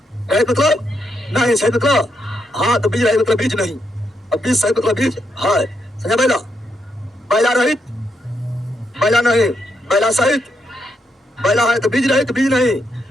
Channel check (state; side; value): normal; both; correlation 0.80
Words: रहित मतलब नहीं, सहित मतलब हाँ। तो बीज रहित मतलब बीज नहीं, अब बीज सहित मतलब बीज है, समझा। बैला, बैला रहित, बैला नहीं, बैला सहित, बैला है तो बीज रहित बीज नहीं।